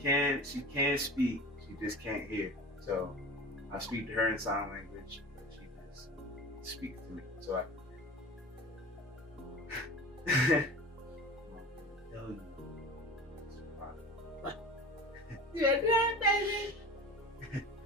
she can speak, she just can't hear. So I speak to her in sign language, but she just speaks to me. So I tell you. You're done, baby.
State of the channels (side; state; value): both; normal; correlation 0.35